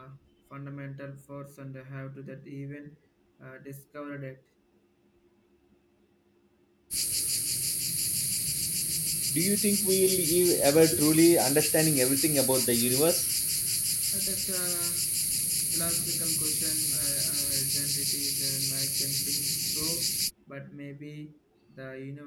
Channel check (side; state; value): both; identical; correlation 1.00